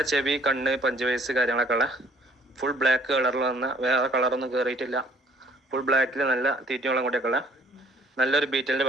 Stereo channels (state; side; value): normal; both; correlation 0.58